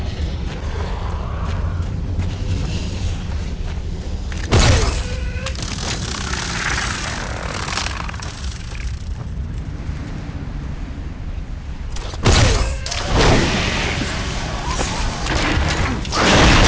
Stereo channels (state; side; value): identical; both; correlation 1.00